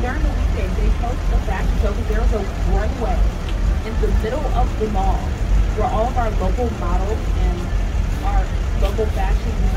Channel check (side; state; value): both; identical; correlation 1.00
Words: during the weekdays, they host a fashion show because there's a runway in the middle of the mall where all of our local models and our local fashion